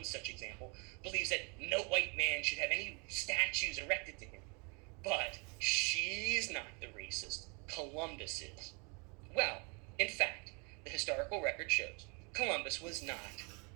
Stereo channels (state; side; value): quieter; left; 33.0 dB